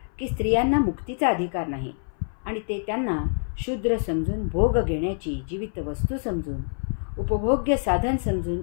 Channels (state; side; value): silent; right; 59 dB below the other